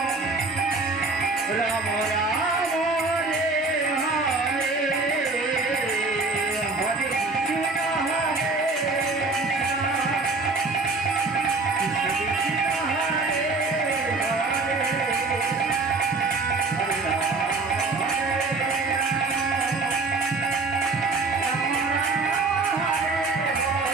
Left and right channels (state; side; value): quieter; left; 3.7 dB